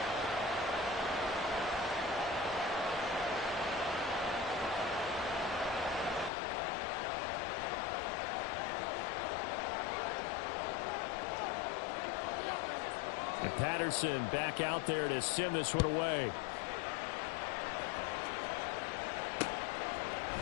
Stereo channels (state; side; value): drops out; right; at 6.3 s